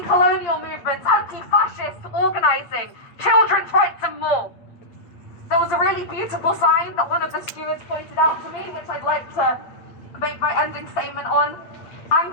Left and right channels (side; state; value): right; late; 8.7 ms